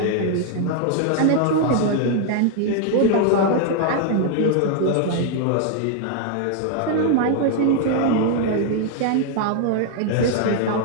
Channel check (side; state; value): both; different; correlation 0.00